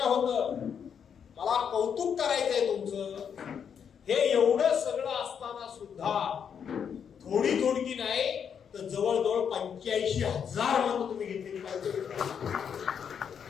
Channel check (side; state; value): right; quieter; 7.6 dB